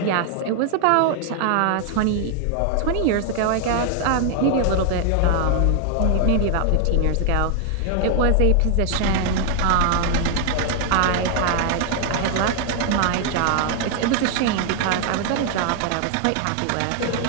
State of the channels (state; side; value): different; both; correlation 0.00